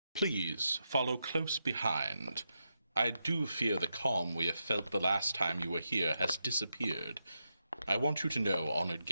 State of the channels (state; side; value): inverted; both; correlation -0.85